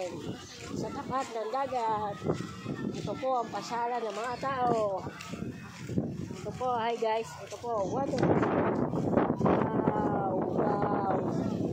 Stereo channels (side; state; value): both; identical; correlation 1.00